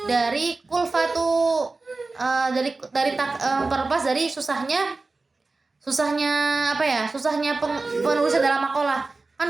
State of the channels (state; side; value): quieter; left; 3.6 dB